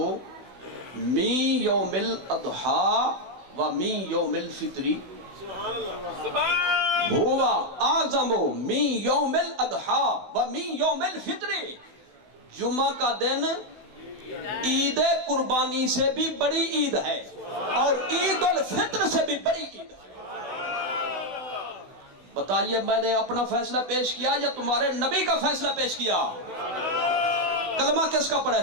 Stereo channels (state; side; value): late; left; 16 ms